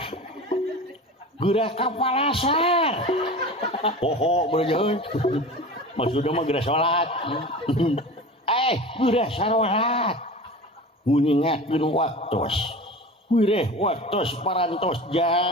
gerah kapalasar poho bener maksudnya mah gerah sholat gerah salat nguningatkeun waktos wireh waktos parantos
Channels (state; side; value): normal; both; correlation 0.34